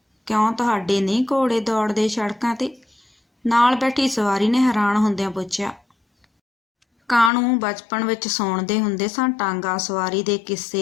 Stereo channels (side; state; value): right; drops out; at 7.3 s